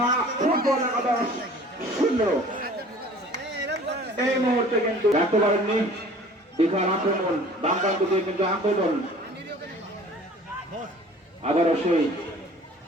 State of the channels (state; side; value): normal; both; correlation 0.48